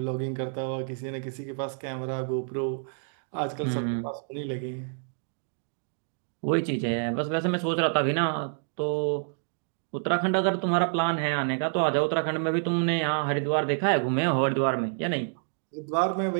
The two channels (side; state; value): left; silent; 59 dB below the other